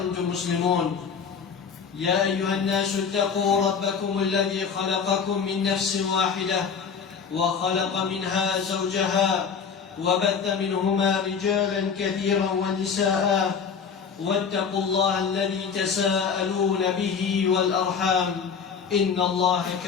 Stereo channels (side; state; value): right; quieter; 6.3 dB